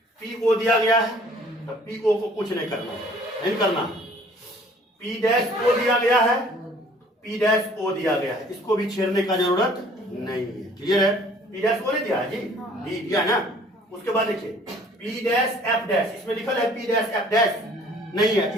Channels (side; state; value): both; normal; correlation 0.55